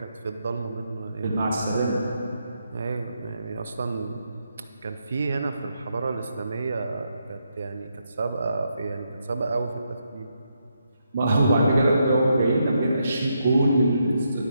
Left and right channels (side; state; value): both; inverted; correlation -0.81